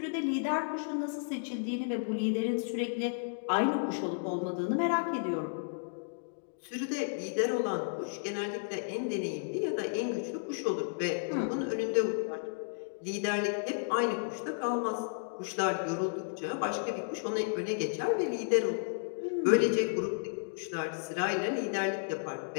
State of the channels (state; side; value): silent; right; digital silence